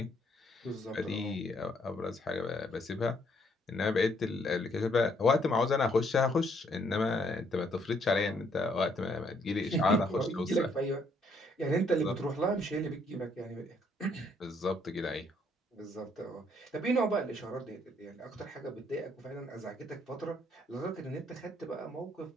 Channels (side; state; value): both; normal; correlation 0.69